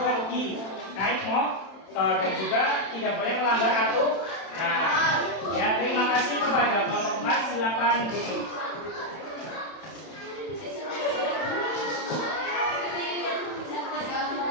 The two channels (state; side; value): late; right; 31 ms